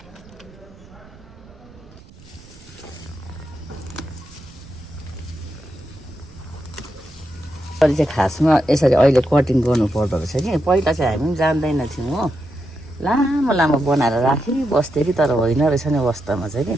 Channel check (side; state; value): right; noise; rumble, 22 dB below the sound